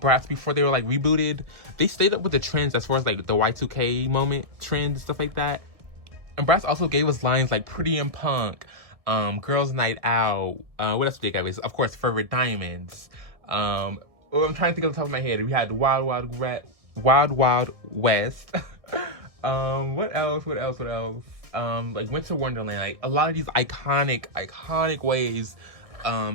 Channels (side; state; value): left; late; 1.6 ms